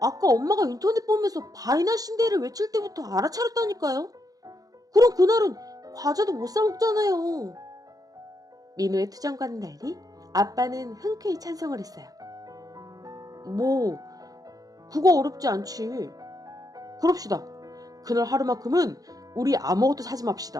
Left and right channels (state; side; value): late; left; 0.18 ms